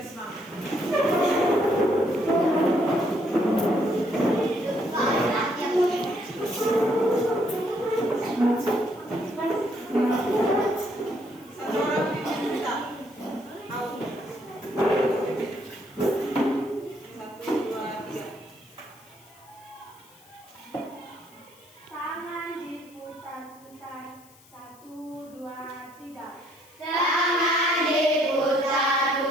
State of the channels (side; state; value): left; noise; hiss, 26 dB below the sound